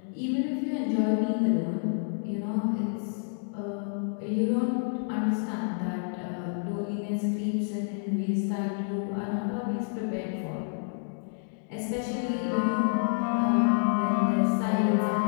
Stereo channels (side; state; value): right; silent; digital silence